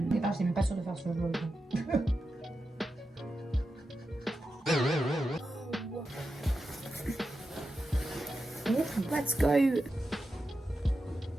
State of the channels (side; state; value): both; normal; correlation 0.90